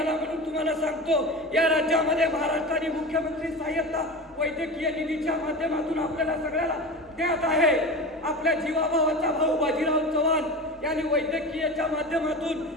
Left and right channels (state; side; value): normal; both; correlation 0.29